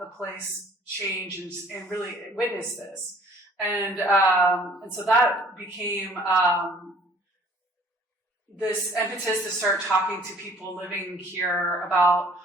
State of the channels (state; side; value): normal; both; correlation 0.54